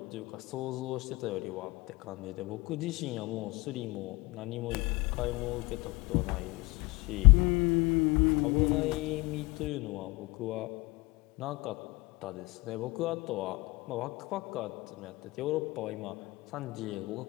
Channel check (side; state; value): right; quieter; 23.1 dB